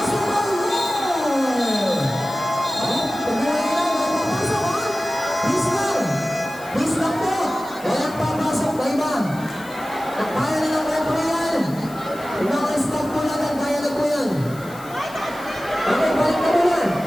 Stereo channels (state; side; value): noise; left; hiss, 20 dB below the sound